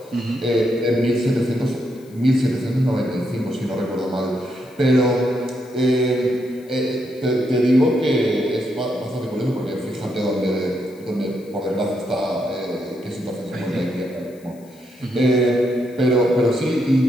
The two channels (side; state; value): left; noise; hiss, 28 dB below the sound